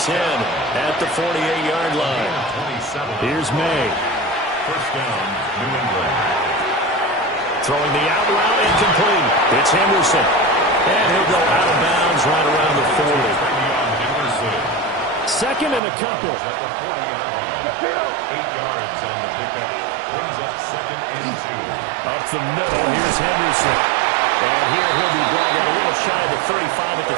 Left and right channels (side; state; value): left; drops out; at 15.8 s